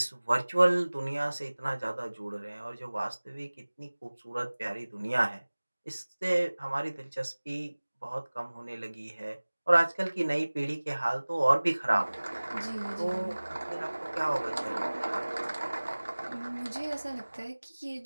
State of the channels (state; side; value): inverted; both; correlation -1.00